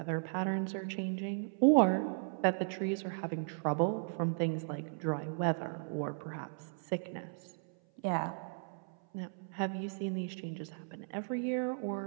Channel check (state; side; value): silent; left; 54 dB below the other